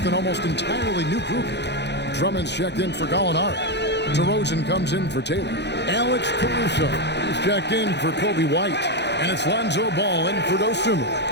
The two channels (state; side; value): late; right; 0.50 ms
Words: an almost entirely new group. Drummond's checked in for Gallinari. DeRozan comes in for Taylor. Alex Caruso is checked in for Kobe White. And it's Lonzo Ball in for